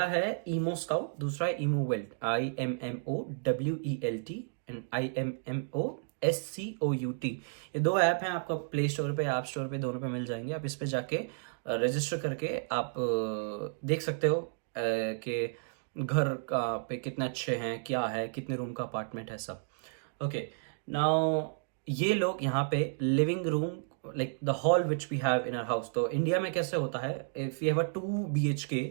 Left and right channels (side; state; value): left; silent; digital silence